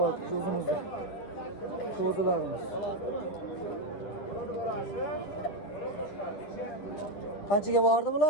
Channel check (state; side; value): late; right; 9.9 ms